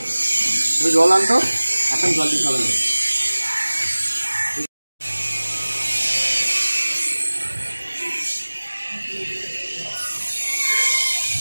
জল আনতো এখন জল দিতে হবে না।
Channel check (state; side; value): inverted; both; correlation -1.00